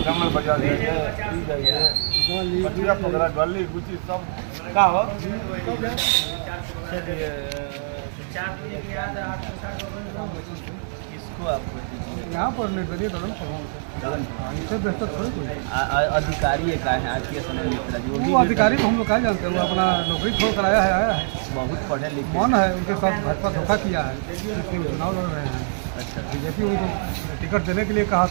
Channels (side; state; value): left; silent; 62 dB below the other